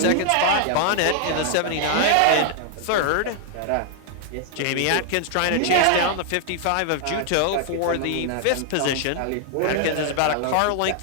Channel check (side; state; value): both; different; correlation 0.00